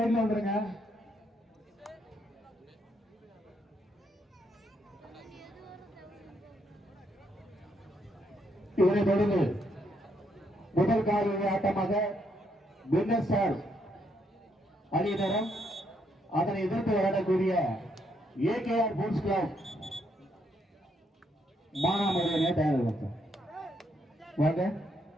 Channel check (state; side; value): normal; both; correlation 0.75